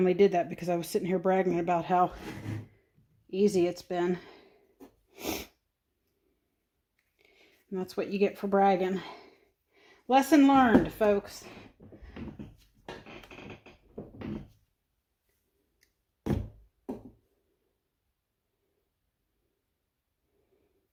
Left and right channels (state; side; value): identical; both; correlation 1.00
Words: did that because I was sitting here bragging about how easy it's been. And that's what you get for bragging. Lesson learned, folks.